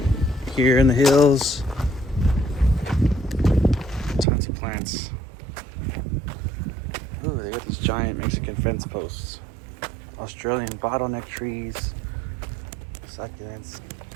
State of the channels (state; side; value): drops out; left; at 4.2 s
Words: here in the hills. Tons of plants. Ooh, they got these giant Mexican fence posts. Australian bottleneck trees, succulents,